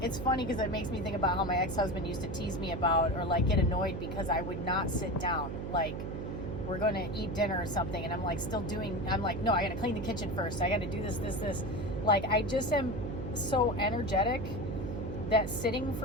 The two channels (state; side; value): noise; right; hum, 5 dB below the sound